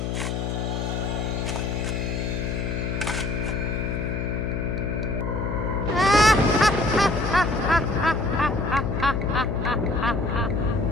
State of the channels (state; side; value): noise; left; hum, 1 dB below the sound